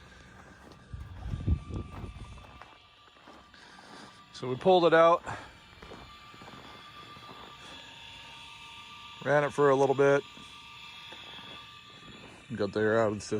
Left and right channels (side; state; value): both; identical; correlation 1.00